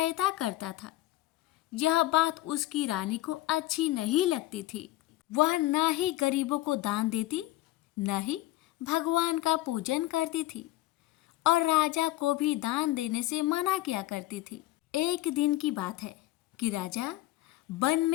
करता था। यह बात उसकी रानी को अच्छी नहीं लगती थी। वह न ही गरीबों को दान देती, न ही भगवान का पूजन करती थी और राजा को भी दान देने से मना किया करती थी। एक दिन की बात है कि राजा वन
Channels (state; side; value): quieter; right; 17.1 dB